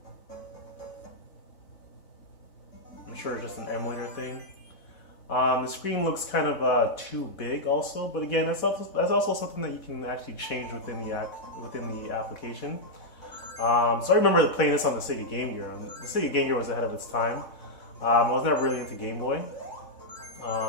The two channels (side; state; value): right; late; 4.3 ms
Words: I'm sure it's just an emulator thing. The screen looks kind of too big, also. But again, that's also something that you can actually change within the application. So I remember playing this on the Sega Game Gear. The Sega Game Gear was ahead of its time. I was never really into Game Boy.